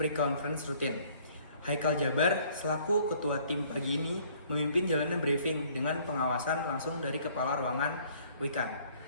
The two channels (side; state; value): both; inverted; correlation -0.59